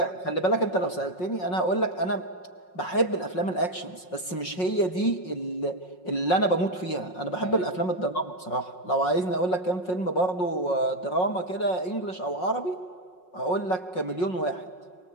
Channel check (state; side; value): late; right; 5.5 ms